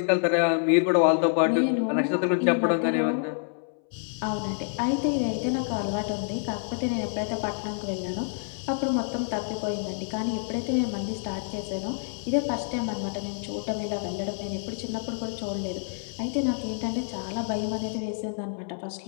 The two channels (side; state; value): right; silent; 60 dB below the other